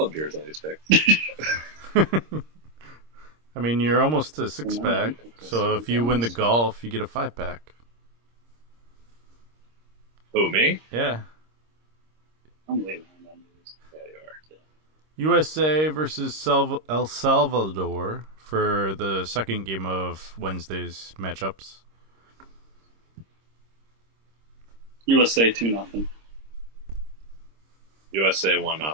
beers on these picks. I mean, you're almost to 6-pack, Well, so if you win the golf, you get a 5-pack. Who, me? Yeah. I'm leaving on numbers. Yeah, you are. USA versus El Salvador for the second game of Wednesday's matchups. USA 2-0. USA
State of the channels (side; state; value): left; late; 26 ms